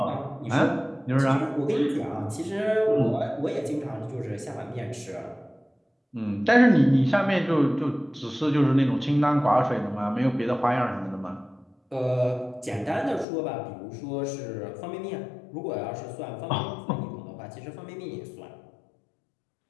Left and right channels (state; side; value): drops out; right; at 13.2 s